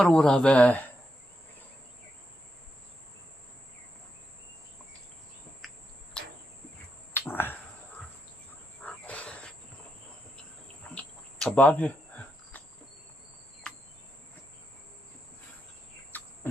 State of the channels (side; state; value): both; normal; correlation 0.83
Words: về cả ban đi